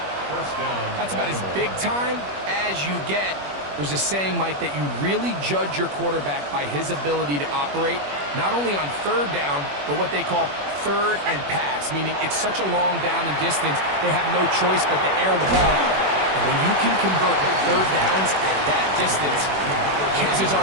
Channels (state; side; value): late; left; 21 ms